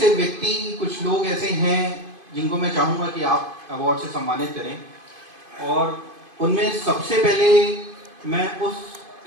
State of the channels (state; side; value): late; left; 2.5 ms